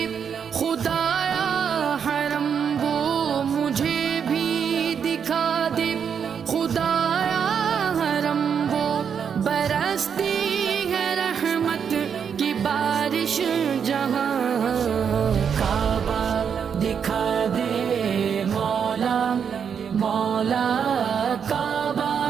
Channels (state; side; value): quieter; left; 7.3 dB